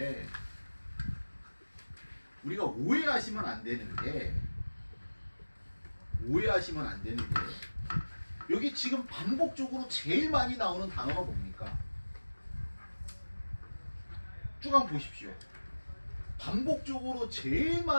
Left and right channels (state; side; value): inverted; both; correlation -1.00